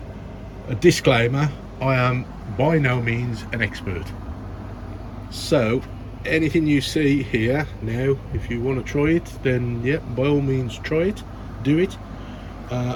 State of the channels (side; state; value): both; identical; correlation 1.00